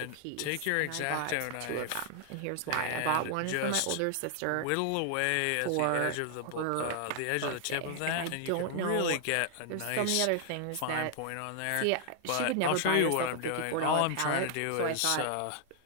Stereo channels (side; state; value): both; different; correlation 0.00